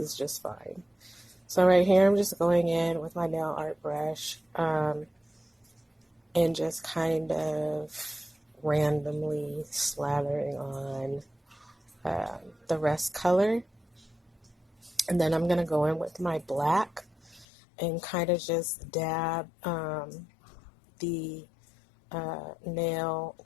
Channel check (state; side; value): drops out; right; at 17.4 s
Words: just fine. So right here, I'm just going in with my nail art brush and just kind of randomly slathering on the rest color. And then I'm going to go in with my black and kind of just dab the nail